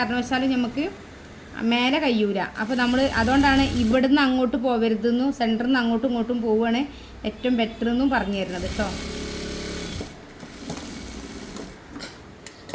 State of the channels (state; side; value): identical; both; correlation 1.00